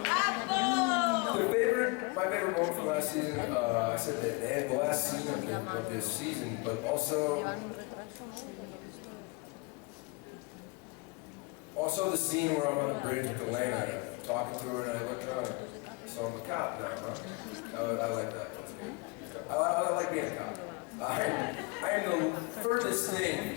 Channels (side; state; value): right; quieter; 27.6 dB